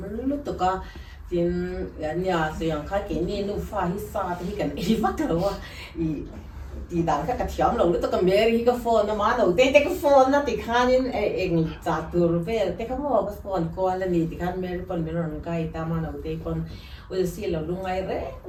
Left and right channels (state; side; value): identical; both; correlation 1.00